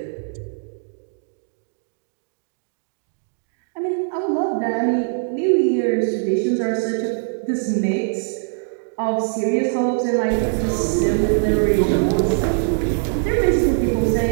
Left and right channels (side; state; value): left; silent; digital silence